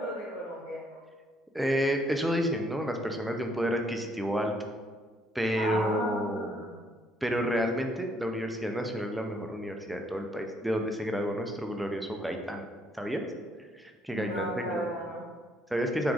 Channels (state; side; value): normal; both; correlation 0.68